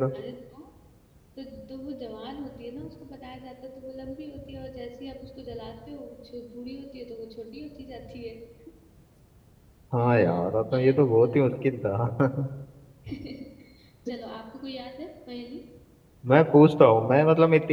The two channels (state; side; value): identical; both; correlation 1.00